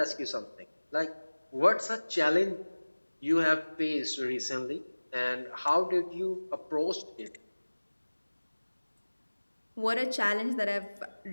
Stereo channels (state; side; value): inverted; both; correlation -1.00